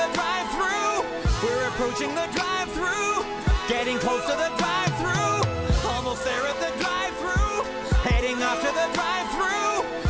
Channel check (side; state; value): both; identical; correlation 1.00